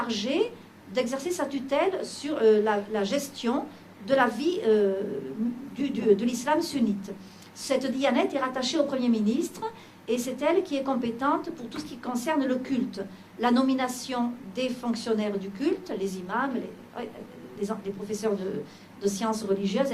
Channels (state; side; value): identical; both; correlation 1.00